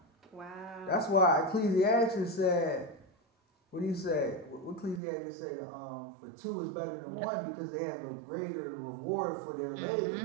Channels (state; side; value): drops out; left; at 5.0 s